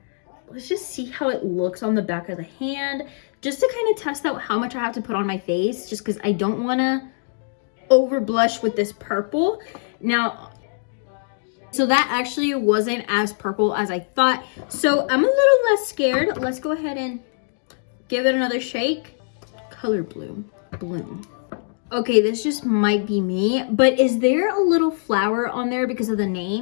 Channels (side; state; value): right; silent; digital silence